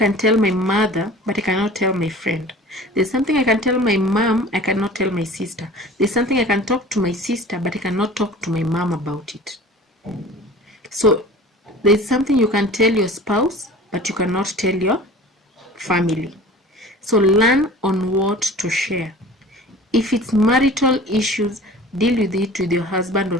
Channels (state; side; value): normal; both; correlation 0.42